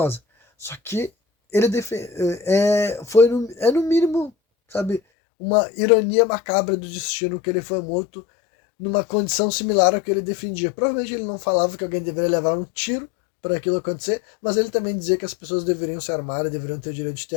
Só que ele no mínimo, sabe, uma ironia macabra do destino que ele foi morto numa condição similar ao que ele defendia. Provavelmente ele não falava que alguém deveria levar um tiro para aquilo acontecer, mas ele também dizia que as pessoas deveriam se armar e deveriam ter o direito de ter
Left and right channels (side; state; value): right; drops out; at 5.0 s